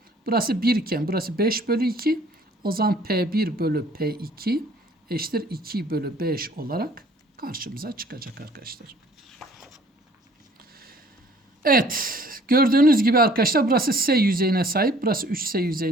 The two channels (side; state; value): both; normal; correlation 0.55